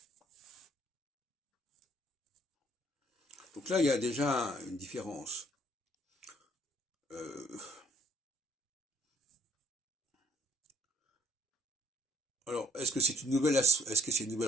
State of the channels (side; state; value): both; normal; correlation 0.61